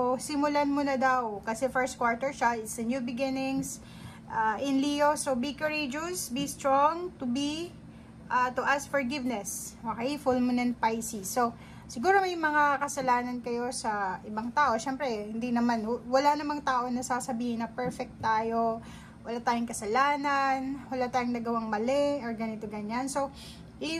simulan mo na daw. Kasi first quarter siya. It's a new beginnings in Leo. So, be courageous. Be strong. To ask forgiveness. Okay? Full moon in Pisces. So, siguro may mga kasalanan kayo sa ibang tao. Siyempre, hindi naman. Wala namang tao na sasabihin na perfect tayo. Wala tayong kasalanan. Wala tayong nagawang mali. Or ganito, ganyan. So,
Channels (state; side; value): identical; both; correlation 1.00